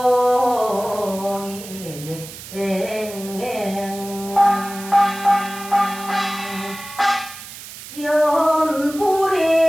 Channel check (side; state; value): right; noise; hiss, 14 dB below the sound